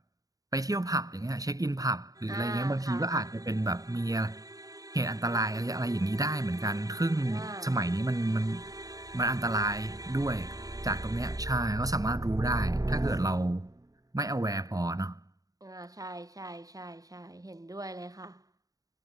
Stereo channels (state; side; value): late; left; 0.17 ms